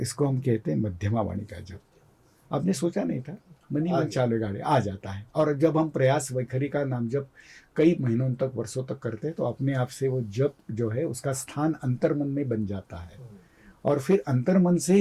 इसको हम कहते हैं मध्यमा वाणी का जप। आपने सोचा नहीं था, मन ही मन चालू गाड़ी आ जाता है। और जब हम प्रयास वैखरी का नाम जप कई महीनों तक, वर्षों तक करते हैं, तो अपने आप से वो जप जो है उसका स्थान अंतर्मन में बन जाता है और फिर अंतर्मन से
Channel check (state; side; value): identical; both; correlation 1.00